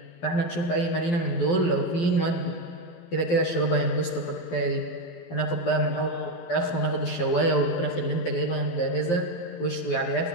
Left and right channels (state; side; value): late; right; 12 ms